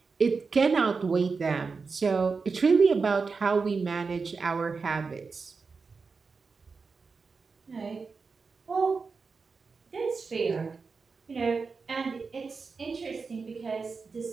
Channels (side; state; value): left; quieter; 4.7 dB